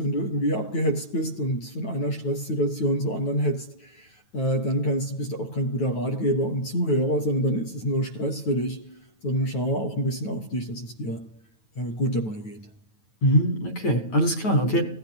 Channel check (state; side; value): late; right; 9.2 ms